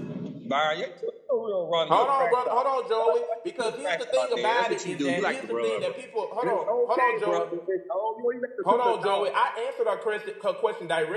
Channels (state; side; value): identical; both; correlation 1.00